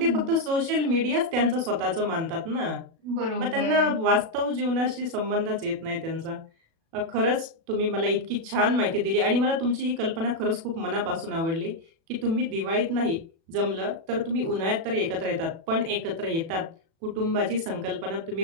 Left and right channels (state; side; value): late; left; 36 ms